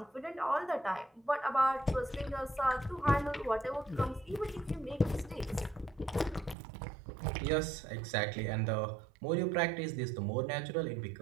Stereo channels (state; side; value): drops out; left; at 6.6 s